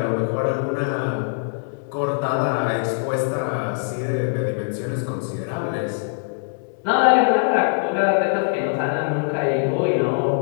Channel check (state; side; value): silent; right; digital silence